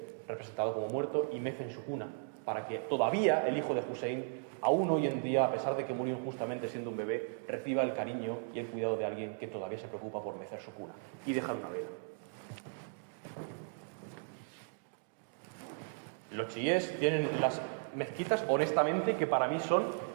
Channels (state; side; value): silent; left; digital silence